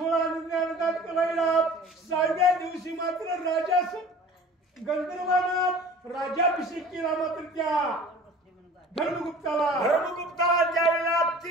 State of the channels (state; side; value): normal; both; correlation 0.44